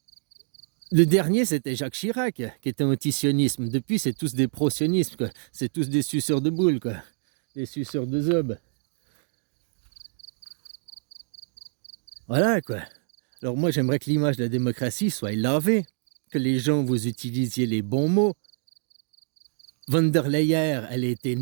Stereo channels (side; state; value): left; silent; 61 dB below the other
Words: le dernier, c'était Jacques Chirac, qui était anti-sionisme. Depuis, c'est tous des pro-sionismes, quoi. C'est tous des suceurs de boules, quoi. Des suceurs de zob. Voilà, quoi. Alors moi, j'aimerais que l'image de la démocratie soit lavée, que les gens, vous utilisiez les bons mots. Von der Leyen, elle a été